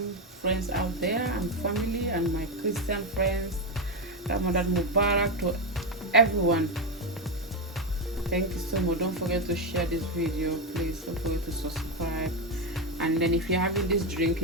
friends out there and family, and my Christian friends. Ramadan Mubarak to everyone. Thank you so much. Don't forget to share this video, please. Don't forget to subscribe. And then if you're having this drink,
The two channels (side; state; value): both; normal; correlation 0.09